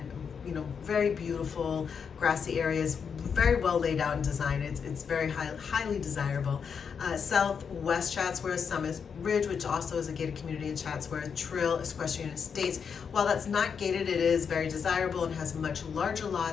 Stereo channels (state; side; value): quieter; right; 6.5 dB